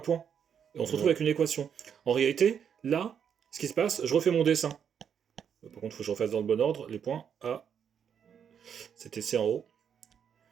Et on se retrouve avec une équation. En réalité, là, ce qui se passe, je refais mon dessin. Par contre, il faut que je refasse dans le bon ordre. Les points A, c'était C en haut.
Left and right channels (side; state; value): left; quieter; 7.9 dB